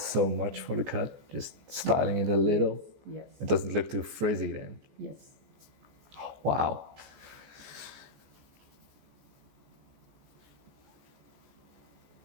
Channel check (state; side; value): late; left; 15 ms